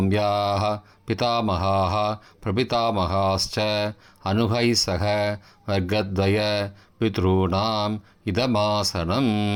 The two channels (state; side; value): identical; both; correlation 1.00